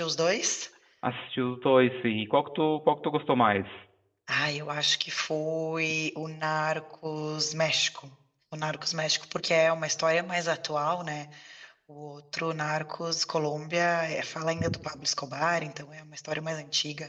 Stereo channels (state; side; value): identical; both; correlation 1.00